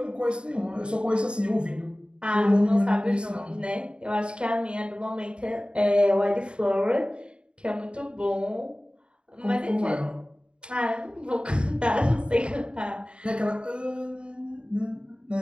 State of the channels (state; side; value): late; left; 0.053 ms